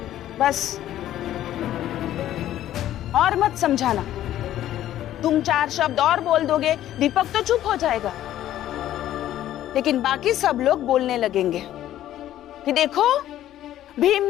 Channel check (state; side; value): quieter; right; 12.7 dB